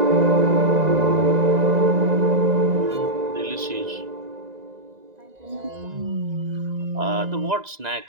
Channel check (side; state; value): left; late; 1.9 ms